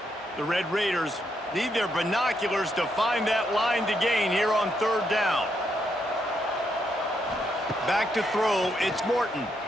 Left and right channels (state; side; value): normal; both; correlation 0.78